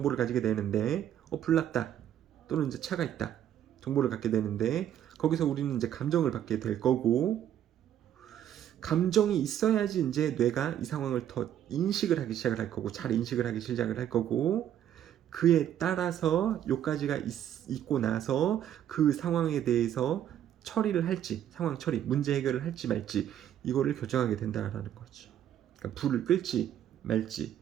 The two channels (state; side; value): quieter; left; 10.7 dB